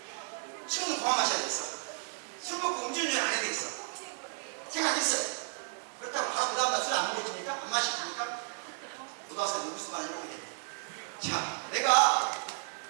술은 그만 마셔야 되겠어. 술 먹고 음주운전 안 해야 되겠어. 생각했어요. 그렇다고 바로 그 다음날 술 안 먹어줍니까? 안 마시십니까? 고등학생 무슨 말을 해보게 되네. 자, 내가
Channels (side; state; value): left; silent; 56 dB below the other